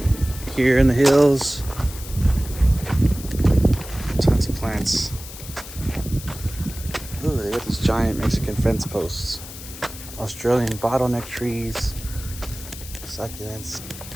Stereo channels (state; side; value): noise; left; hiss, 13 dB below the sound